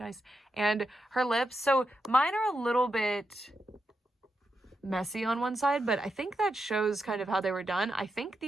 And her lips, so mine are a little bit messy on one side, but I think that shows kind of how they were done. I think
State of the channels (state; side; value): normal; both; correlation 0.86